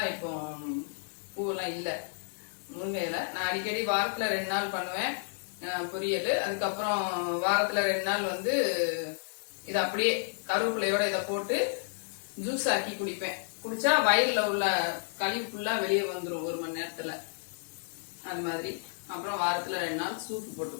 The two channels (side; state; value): right; silent; digital silence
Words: இப்போ பூவெல்லாம் இல்ல. முருங்கை இலை நான் அடிக்கடி வாரத்துல 2 நாள் பண்ணுவேன் பொரியல். அதுக்கப்புறம் வாரத்துல 2 நாள் இதை அப்படியே கருவேப்பிலையோட இதை போட்டு ஜூஸ் ஆக்கி குடிப்பேன். குடிச்சா வயல்ல உள்ள கழிவு ஃபுல்லா வெளியே வந்துடும் 1 மணி நேரத்துல. அது மாதிரி அப்புறம் வாரத்துல 2 நாள் சூப்பு போட்டு